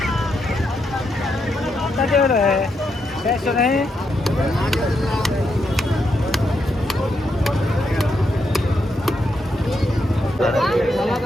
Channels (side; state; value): both; normal; correlation 0.81